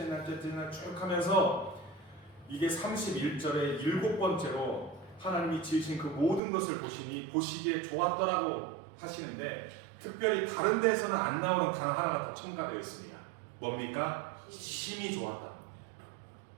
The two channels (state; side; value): drops out; left; at 6.4 s